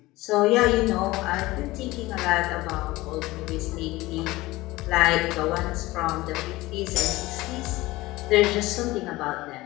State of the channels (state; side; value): quieter; right; 19.3 dB